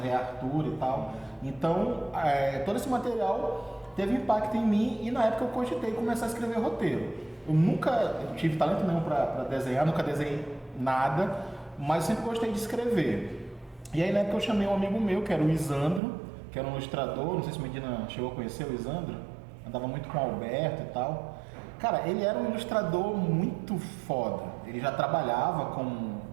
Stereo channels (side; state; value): left; drops out; at 16.0 s